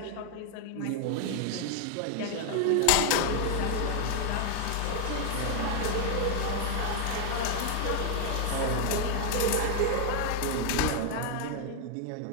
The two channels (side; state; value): both; different; correlation 0.00